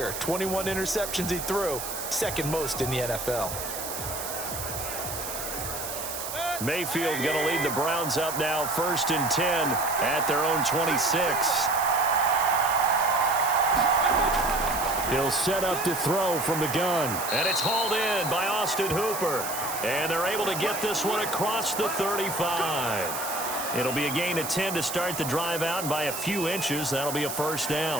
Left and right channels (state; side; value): noise; right; hiss, 6 dB below the sound